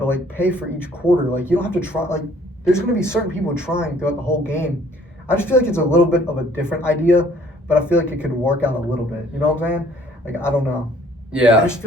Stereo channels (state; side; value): normal; both; correlation 0.58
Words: like pay for each quarter. Like you don't have to try. Like there's going to be certain people trying throughout the whole game. I just feel like it's a little bit of a different idea, but I feel like it could work out a little bit. You know what I'm saying? Like I don't know. Yeah. I just